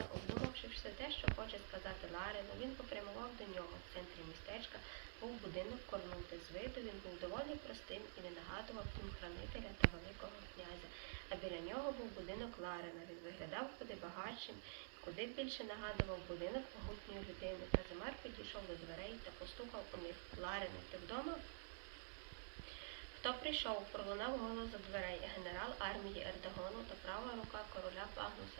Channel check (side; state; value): left; silent; digital silence